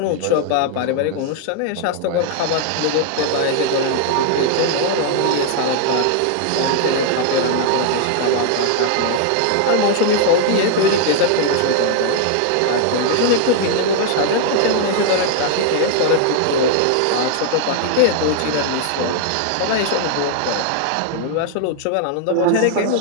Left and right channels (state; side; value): different; both; correlation 0.00